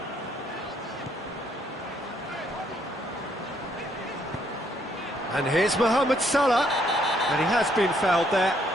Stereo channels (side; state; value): both; normal; correlation 0.69